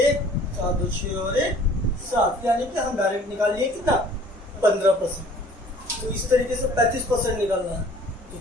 4 2 6 और 1 7, यानी कि हम डायरेक्ट निकाल लिए कितना 15%। तो इस तरीके से 35% निकालना है, तो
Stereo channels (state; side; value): normal; both; correlation 0.52